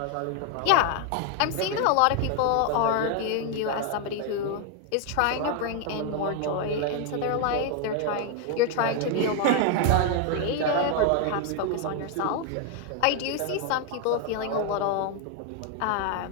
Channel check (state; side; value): different; both; correlation 0.00